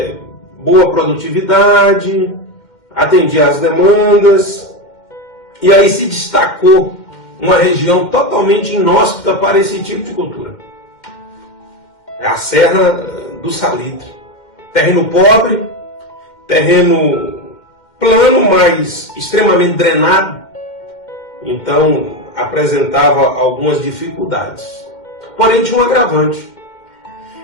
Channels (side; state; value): right; late; 2.1 ms